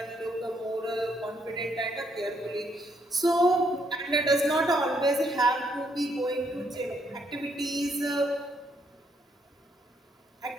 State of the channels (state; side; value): normal; both; correlation 0.72